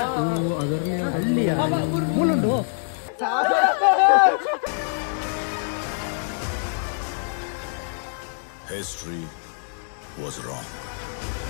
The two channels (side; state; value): right; silent; digital silence